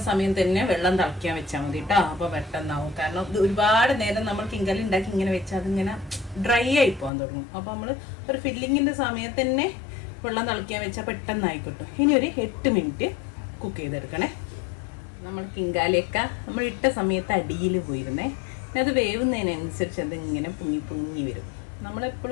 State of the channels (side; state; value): right; drops out; at 7.1 s